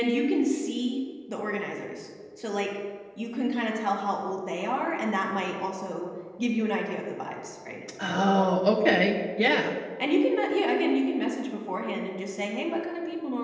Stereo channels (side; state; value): both; identical; correlation 1.00